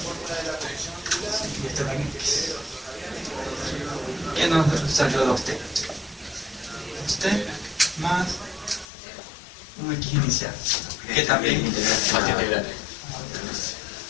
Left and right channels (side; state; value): right; drops out; at 8.8 s